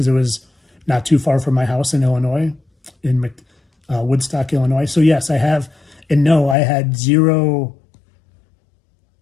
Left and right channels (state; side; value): drops out; right; at 6.6 s